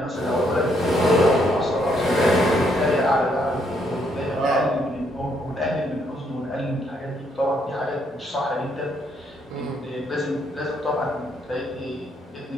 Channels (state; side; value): normal; both; correlation 0.72